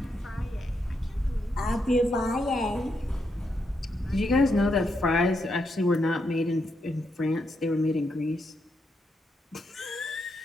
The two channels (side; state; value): both; normal; correlation 0.81